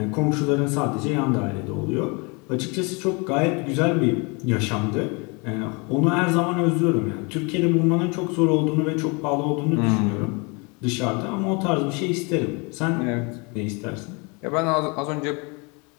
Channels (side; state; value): right; quieter; 30.5 dB